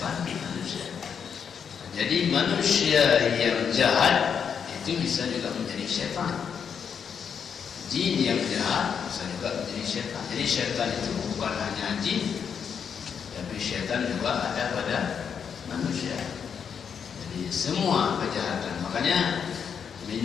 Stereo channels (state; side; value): quieter; right; 7.1 dB